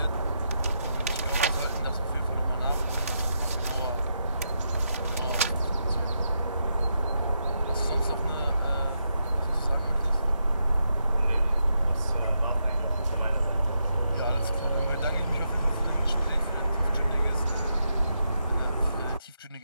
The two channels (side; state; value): both; inverted; correlation -0.82